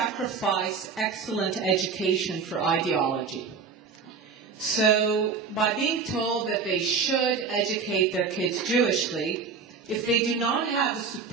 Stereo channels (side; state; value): left; quieter; 5.4 dB